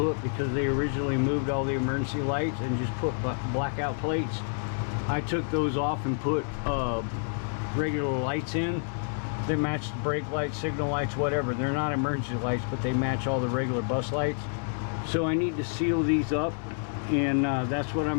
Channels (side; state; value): right; silent; digital silence